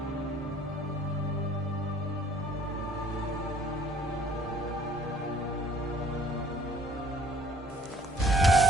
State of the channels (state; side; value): normal; both; correlation 0.57